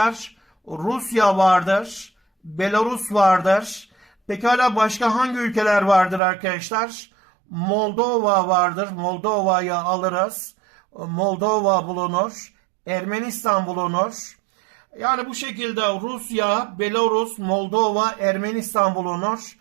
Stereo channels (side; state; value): left; drops out; at 6.2 s